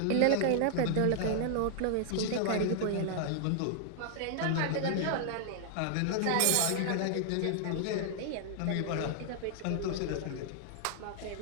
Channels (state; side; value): different; both; correlation -0.01